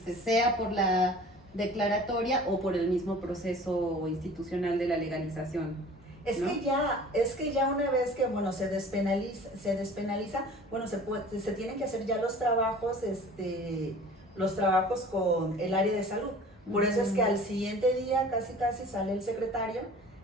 sea por la declaratoria o por el mismo proceso institucional de la legalización. Es que ya una vez que bueno se despenaliza, bueno, se tienen que hacer ya los trabajos con el área de salud. Por eso es que al siguiente día casi sale el secretario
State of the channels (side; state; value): both; normal; correlation 0.45